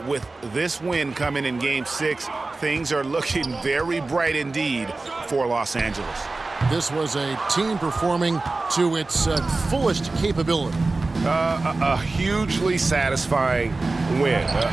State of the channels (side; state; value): left; quieter; 3.4 dB